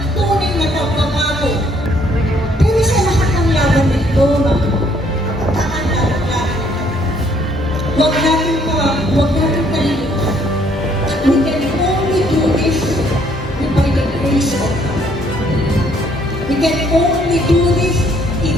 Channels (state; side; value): normal; both; correlation 0.66